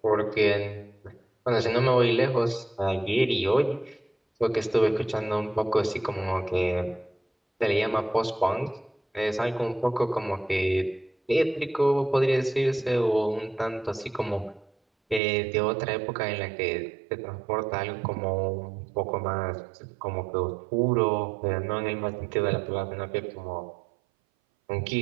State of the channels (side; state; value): left; drops out; at 15.2 s